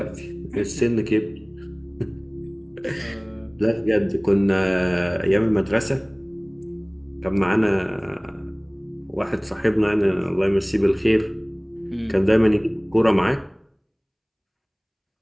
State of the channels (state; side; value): identical; both; correlation 1.00